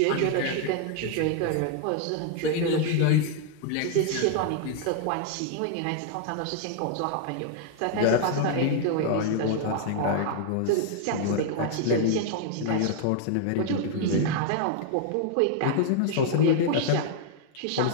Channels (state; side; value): different; both; correlation 0.00